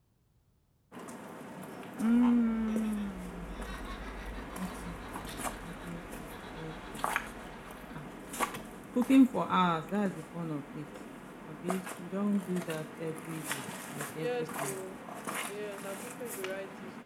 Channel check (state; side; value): identical; both; correlation 1.00